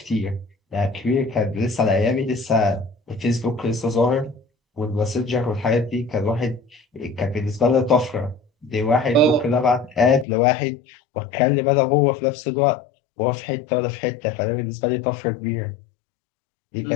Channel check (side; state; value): right; drops out; at 10.2 s